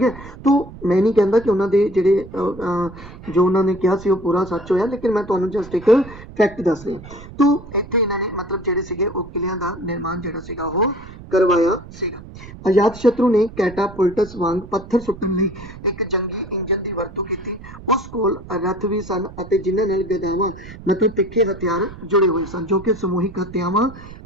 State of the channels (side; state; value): right; noise; rumble, 16 dB below the sound